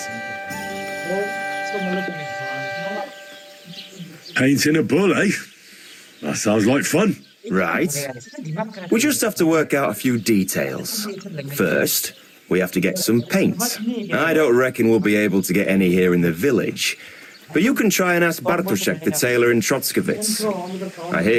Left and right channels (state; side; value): identical; both; correlation 1.00